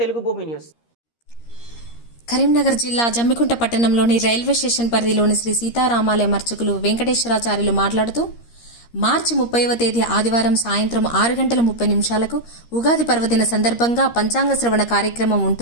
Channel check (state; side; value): late; right; 13 ms